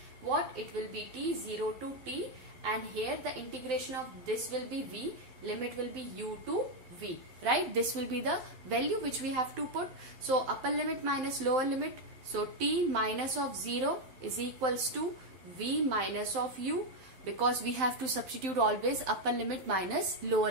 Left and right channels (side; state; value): left; late; 12 ms